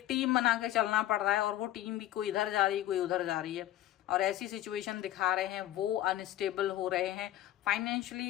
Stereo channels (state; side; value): quieter; right; 13.7 dB